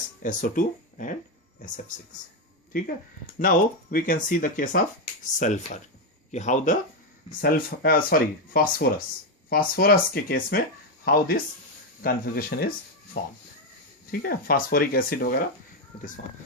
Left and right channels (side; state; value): both; normal; correlation 0.06